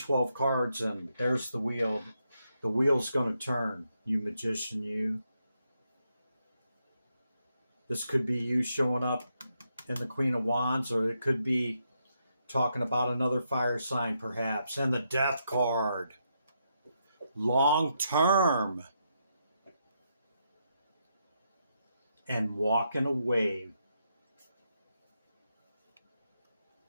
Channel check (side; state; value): both; inverted; correlation -0.80